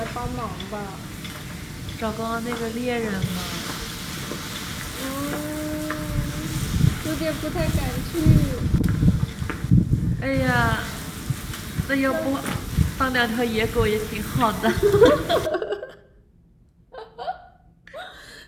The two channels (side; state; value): both; identical; correlation 1.00